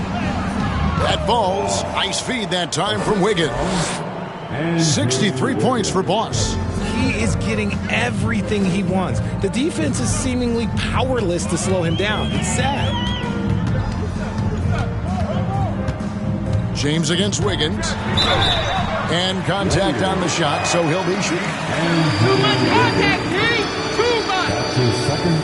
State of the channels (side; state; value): both; identical; correlation 1.00